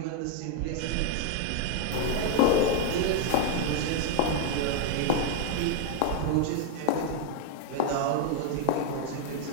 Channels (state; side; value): different; both; correlation 0.00